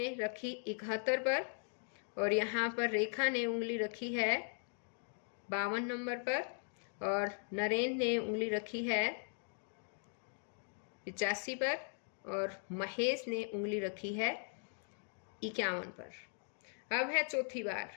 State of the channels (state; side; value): silent; right; 52 dB below the other